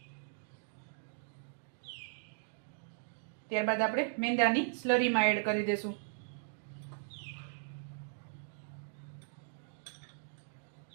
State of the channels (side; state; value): left; silent; digital silence